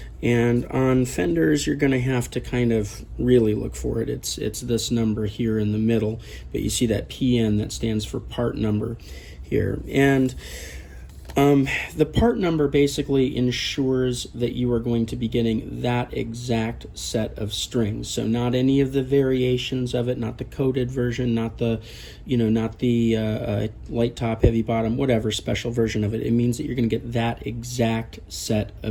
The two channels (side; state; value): both; identical; correlation 1.00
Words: And on Fenders you're going to have to kind of really look for it. It's this number here in the middle, but you see that PN that stands for part number here. And the part number basically ensures that you are going to be getting that exact set of strings. So not any of the variations of it, not the coated version, not the, light top, heavy bottom, whatever special version of it. It means that you're going to get that exact set